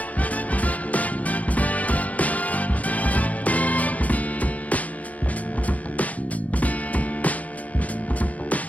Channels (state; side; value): late; right; 0.071 ms